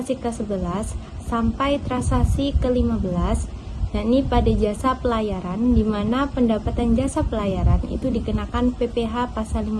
ke-11 sampai transaksi ke-15, yakni pada jasa pelayaran, di mana pendapatan jasa pelayaran itu dikenakan PPh pasal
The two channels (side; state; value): both; identical; correlation 1.00